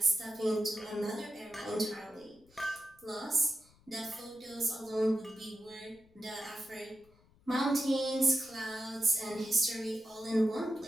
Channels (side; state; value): left; noise; rumble, 30 dB below the sound